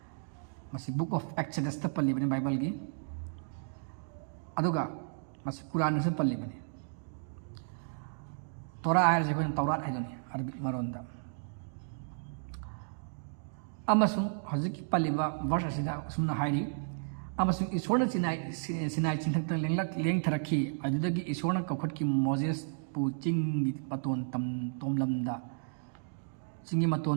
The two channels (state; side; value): silent; left; digital silence